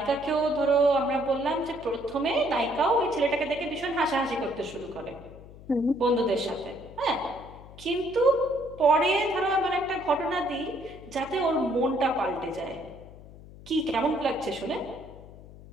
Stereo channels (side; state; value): left; noise; hum, 18 dB below the sound